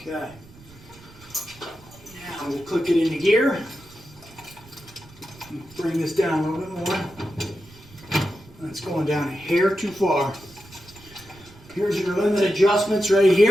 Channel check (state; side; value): noise; right; rumble, 23 dB below the sound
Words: Now we'll click it into gear. Bring this down a little bit more. That's going down a hair too far. Here's your limit adjustments right